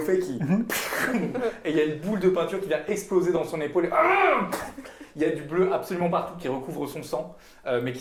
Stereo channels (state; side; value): identical; both; correlation 1.00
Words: qui. Et il y a une boule de peinture qui vient exploser dans son épaule. Et il y a du bleu absolument partout qui recouvre son sang, mais qui